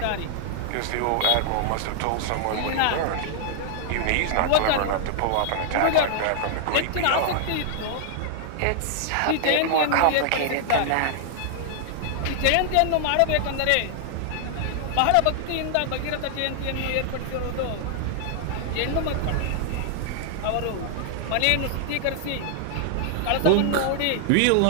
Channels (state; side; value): different; both; correlation 0.00